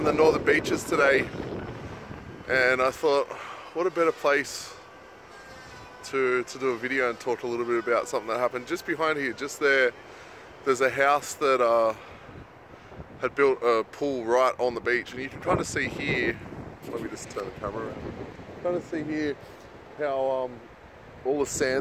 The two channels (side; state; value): both; identical; correlation 1.00